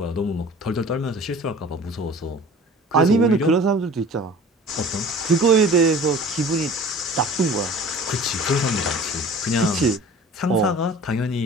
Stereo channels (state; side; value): normal; both; correlation 0.44